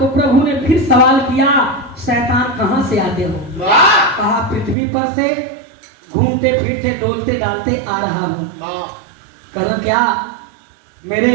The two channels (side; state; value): left; drops out; at 4.8 s